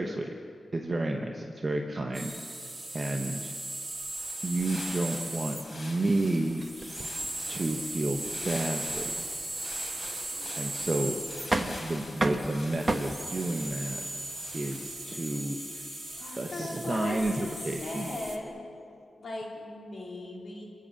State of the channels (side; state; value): both; normal; correlation 0.95